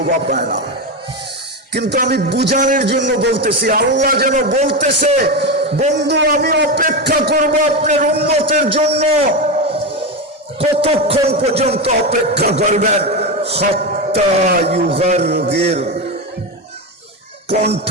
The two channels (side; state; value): both; normal; correlation 0.14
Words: পায় না, কিন্তু আমি বুঝানোর জন্য বলতেছি। আল্লাহ যেন বলতেছে, বন্ধু আমি অপেক্ষা করব আপনার উম্মতের জন্য। কতক্ষণ পর্যন্ত অপেক্ষা করবেন? হাত্তা ইউগারগির,